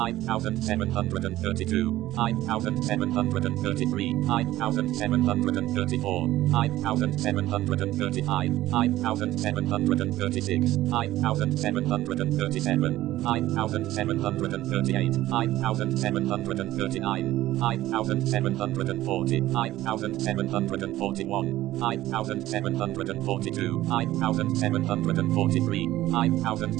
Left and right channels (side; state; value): left; quieter; 15.3 dB